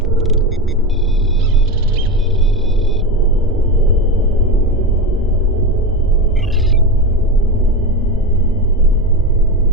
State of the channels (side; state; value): both; normal; correlation 0.22